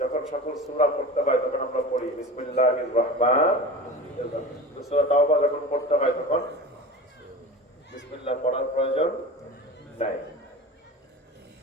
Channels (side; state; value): both; normal; correlation 0.33